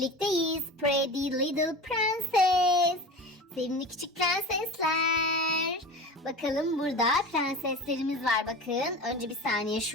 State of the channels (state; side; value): normal; both; correlation 0.33